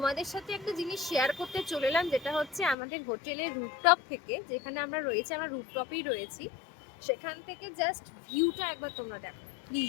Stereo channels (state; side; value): drops out; right; at 2.8 s